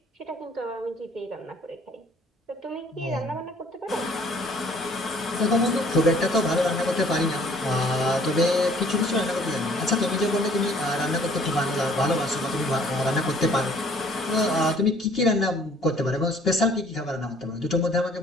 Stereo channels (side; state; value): both; normal; correlation 0.57